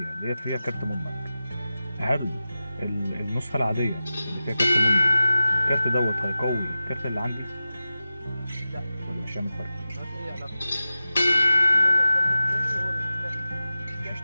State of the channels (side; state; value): both; inverted; correlation -0.94